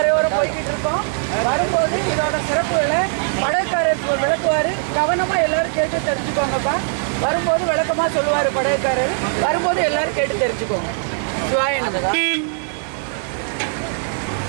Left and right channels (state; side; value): silent; left; digital silence